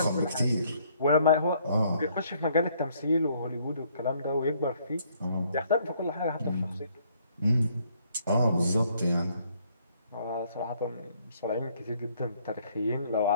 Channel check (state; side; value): inverted; both; correlation -0.66